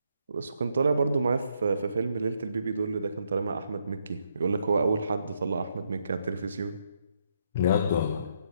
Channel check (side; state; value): both; inverted; correlation -0.75